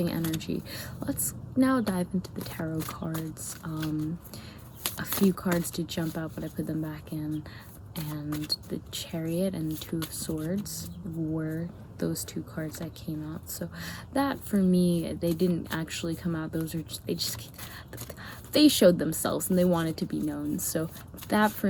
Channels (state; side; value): identical; both; correlation 1.00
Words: energy. Let's now dive into the tarot cards. A few cards did jump out, but I put them back in. and the Chariot and Two of Swords were those two cards that came out. So that, for me, they didn't actually come out. Those are just they showed themselves and they wanted to be known. So that,